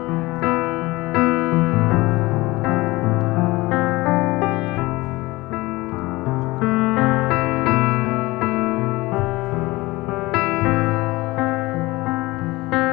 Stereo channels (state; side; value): quieter; right; 21.0 dB